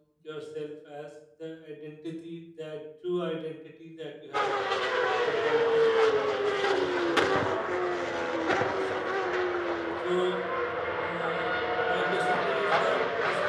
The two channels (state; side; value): identical; both; correlation 1.00